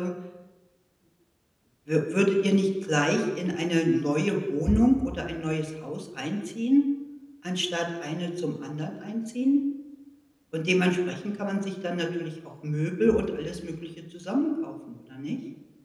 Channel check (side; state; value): both; identical; correlation 1.00